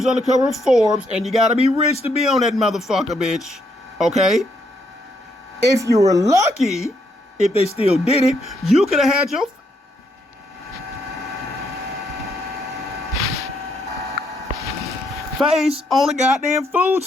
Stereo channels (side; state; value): both; normal; correlation 0.75